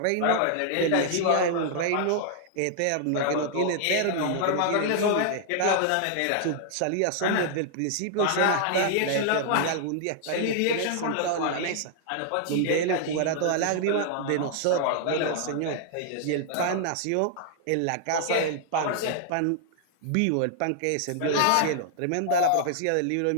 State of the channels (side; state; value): both; different; correlation -0.01